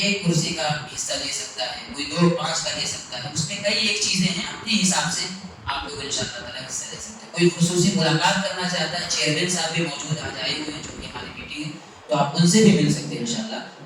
کرسی کا حصہ لے سکتا ہے، کوئی 2-5 کا لے سکتا ہے، اس میں کئی ایک چیزیں ہیں، اپنے حساب سے آپ لوگ انشاءاللہ تعالیٰ حصہ لے سکتے ہیں۔ کوئی خصوصی ملاقات کرنا چاہتا ہے، چیئرمین صاحب بھی موجود آج آئے ہوئے ہیں جو کہ ہماری میٹنگ ہے، تو آپ ان سے بھی مل سکتے ہیں انشاءاللہ۔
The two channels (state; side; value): identical; both; correlation 1.00